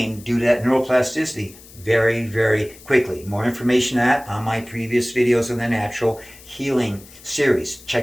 due to that neuroplasticity very, very quickly. More information on my previous videos on the natural healing series.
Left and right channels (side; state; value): left; noise; hiss, 21 dB below the sound